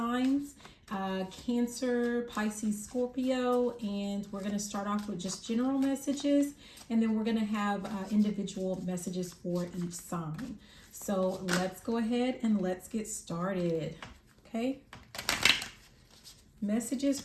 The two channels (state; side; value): identical; both; correlation 1.00